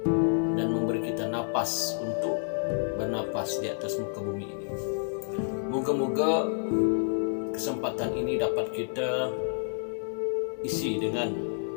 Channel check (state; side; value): silent; right; digital silence